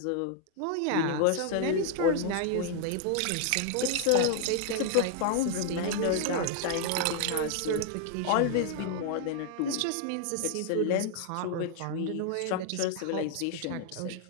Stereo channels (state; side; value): different; both; correlation 0.00